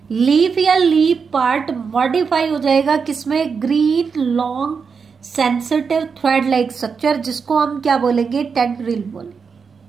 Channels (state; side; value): quieter; left; 5.7 dB